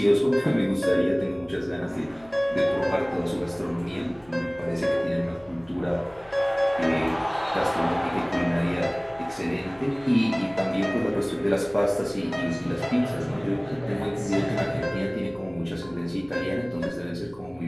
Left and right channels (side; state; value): left; noise; hum, 27 dB below the sound